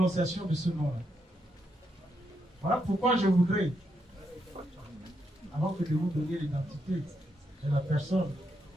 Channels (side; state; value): both; normal; correlation 0.80